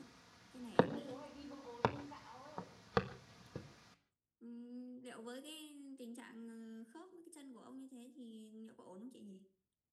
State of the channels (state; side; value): identical; both; correlation 1.00